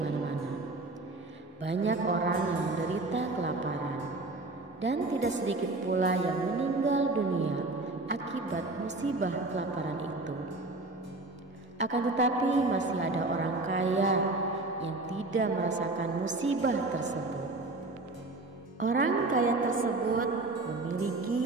Banyak orang yang menderita kelaparan dan tidak sedikit pula yang meninggal dunia akibat musibah kelaparan itu. Akan tetapi masih ada orang kaya yang tidak merasakan musibah tersebut. Orang kaya tersebut memiliki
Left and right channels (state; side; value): quieter; left; 3.1 dB